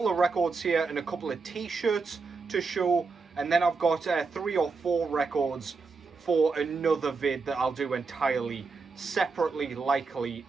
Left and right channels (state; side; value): quieter; left; 4.5 dB